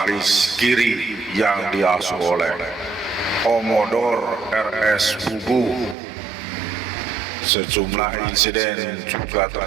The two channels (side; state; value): left; drops out; at 6.0 s